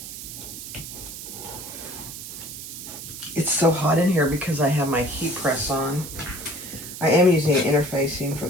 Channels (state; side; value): noise; right; hiss, 10 dB below the sound